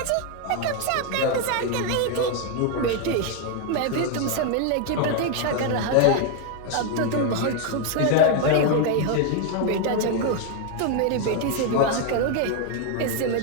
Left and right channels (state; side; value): different; both; correlation 0.01